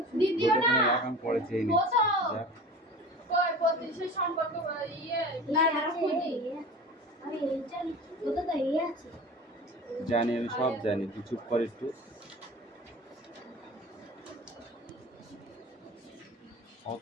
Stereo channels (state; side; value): normal; both; correlation 0.36